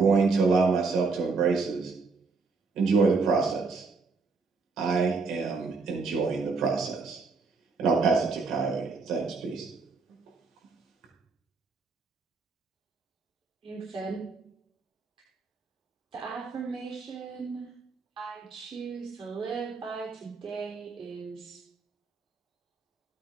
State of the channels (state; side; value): quieter; left; 4.3 dB